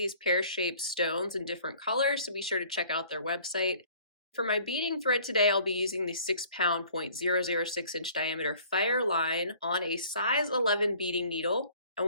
pear-shaped stones in different colors, so be sure to check out their website. For my beading thread today, I'll be using the 6-pound 0.006-inch diameter Fireline on a size 11 beading needle. I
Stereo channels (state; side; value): inverted; both; correlation -0.53